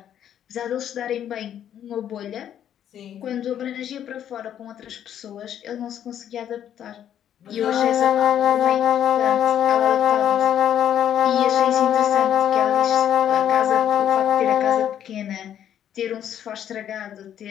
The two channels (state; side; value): quieter; right; 10.1 dB